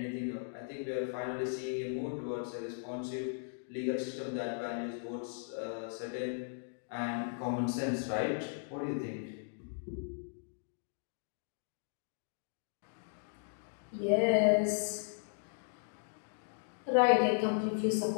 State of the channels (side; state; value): right; silent; digital silence